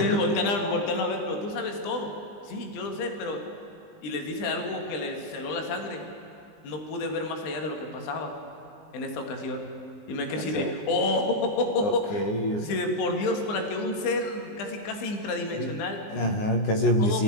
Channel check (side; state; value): right; late; 19 ms